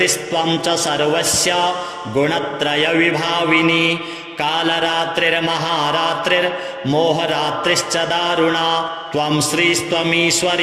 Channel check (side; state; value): both; identical; correlation 1.00